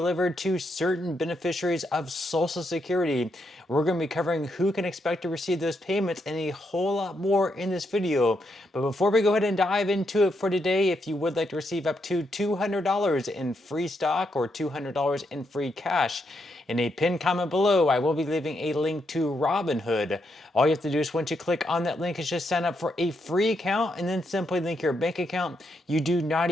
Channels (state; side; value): normal; both; correlation 0.80